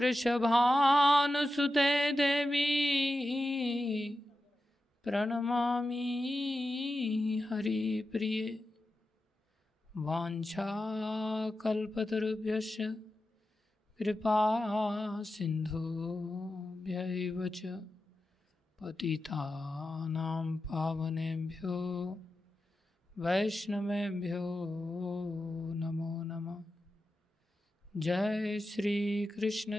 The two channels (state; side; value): normal; both; correlation 0.91